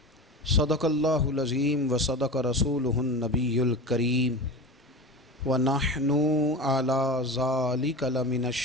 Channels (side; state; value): both; normal; correlation 0.28